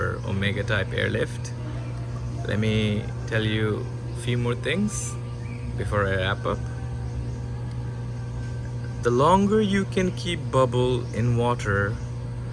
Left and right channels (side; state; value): both; identical; correlation 1.00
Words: Omega type airlift? Let me tell you a few more things before I wrap up. The longer you can keep bubble in water,